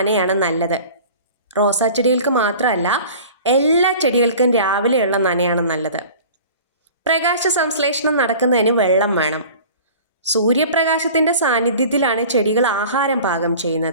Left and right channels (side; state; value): both; inverted; correlation -0.42